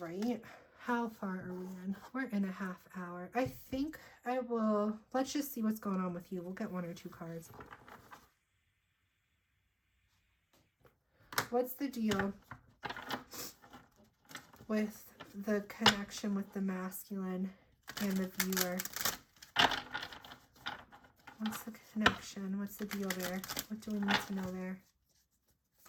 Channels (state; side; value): identical; both; correlation 1.00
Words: How far are we in? We're in a half hour. I think I will, let's just see what's going on with you. We'll get 1 or 2 cards. What's the deal with the connection with the masculine and the viewer? What's the connection? What's the deal there? What do we need to know there?